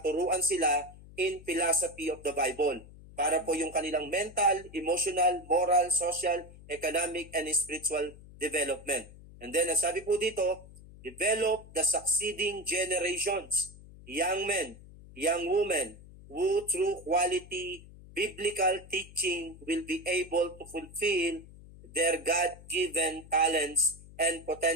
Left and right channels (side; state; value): left; noise; hum, 19 dB below the sound